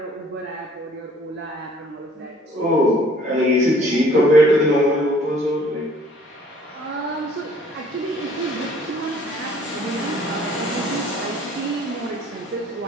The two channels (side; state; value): both; normal; correlation 0.56